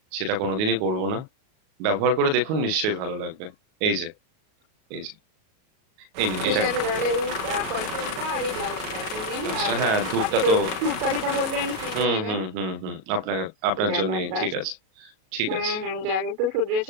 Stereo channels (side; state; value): left; late; 37 ms